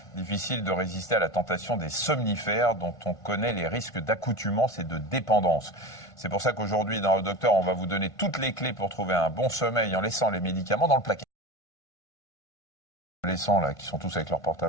difficile de résister à la tentation des somnifères dont on connaît les risques d'accoutumance et de dépendance. C'est pour ça qu'aujourd'hui, dans le docteur, on va vous donner toutes les clés pour trouver un bon sommeil en laissant les médicaments dans le placard. Adolescents là, qui sont tous avec leur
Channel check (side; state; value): right; late; 1.5 ms